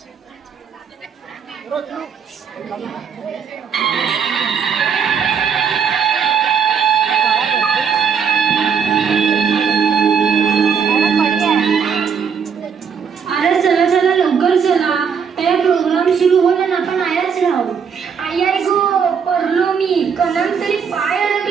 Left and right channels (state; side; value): quieter; left; 6.7 dB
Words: चला चला लवकर चला, त्या प्रोग्राम सुरू होईल ना, आपण आयाच राहू. आई आई गो, पडलो मी, कणन तरी पाय